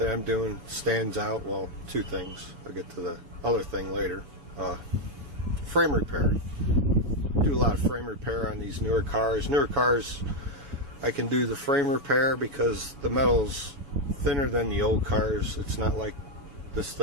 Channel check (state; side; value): late; left; 7.4 ms